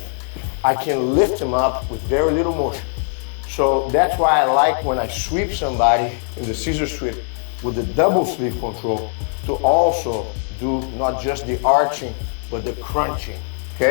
I can lift him up with very little motion. So that's why I like when I sweep somebody in the scissor sweep with the double sleeve control to also do not just the arching, but the crunching,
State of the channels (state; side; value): silent; right; 65 dB below the other